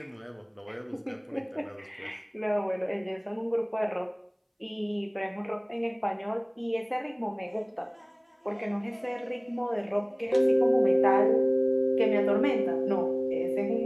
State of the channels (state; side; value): identical; both; correlation 1.00